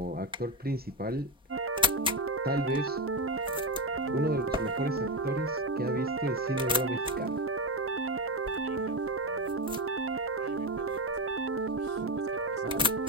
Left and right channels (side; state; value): both; normal; correlation 0.12